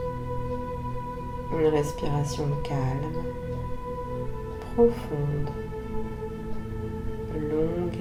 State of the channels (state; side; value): identical; both; correlation 1.00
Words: Une respiration calme, profonde, longue